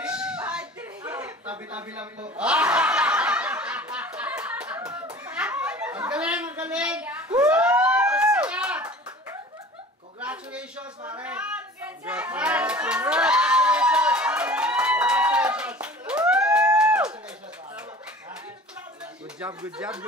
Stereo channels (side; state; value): both; normal; correlation 0.43